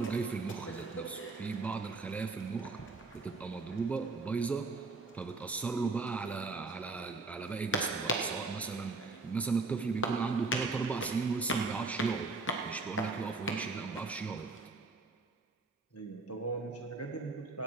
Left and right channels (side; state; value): left; quieter; 3.7 dB